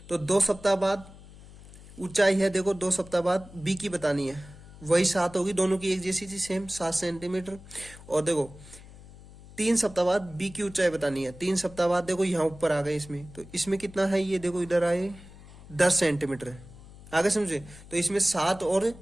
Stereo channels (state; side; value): noise; left; hum, 19 dB below the sound